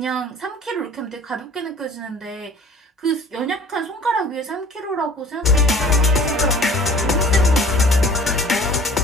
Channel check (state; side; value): normal; both; correlation 0.49